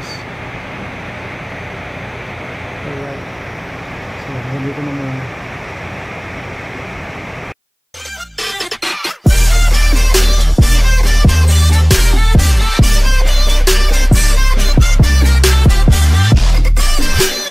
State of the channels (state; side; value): identical; both; correlation 1.00